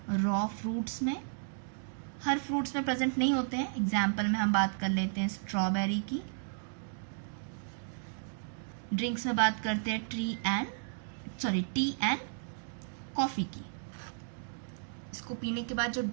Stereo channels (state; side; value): silent; left; digital silence